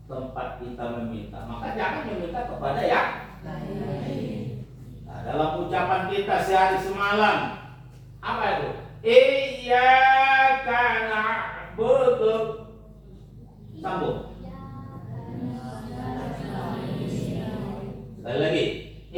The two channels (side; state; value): both; identical; correlation 1.00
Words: tempat kita meminta. Maka jangan meminta kepada yang lain. Nah, dalam ucapan kita sehari semalam, apa itu? Iyyaka na'budu. Sambung. Sekali lagi.